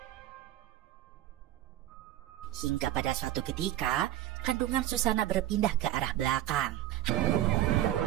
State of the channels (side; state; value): left; quieter; 12.5 dB